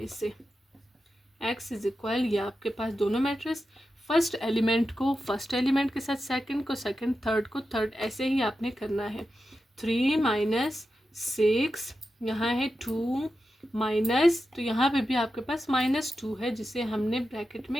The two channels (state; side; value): normal; both; correlation 0.90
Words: इसे। x इज इक्वल, ये आपके पास दोनों मैट्रिक्स, फर्स्ट एलिमेंट को फर्स्ट एलिमेंट के साथ सेकंड को सेकंड, थर्ड को थर्ड, ऐसे ही आपने करना है। 3 - 6, यहाँ है 2 माइनस, तो यहाँ पे भी आपके पास -2 है जिसे हमने ब्रैकेट में